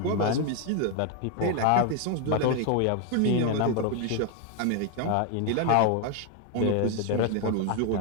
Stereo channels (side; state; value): both; different; correlation 0.01